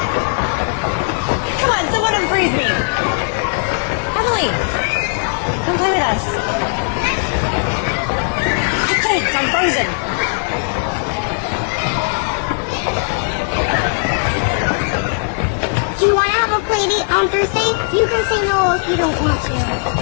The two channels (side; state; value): right; silent; 68 dB below the other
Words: Come on, someone unfreeze me. Emily, untie us. Thanks, I'm freezing. Do you want to have a play date on Thursday? You can say no if you don't want to.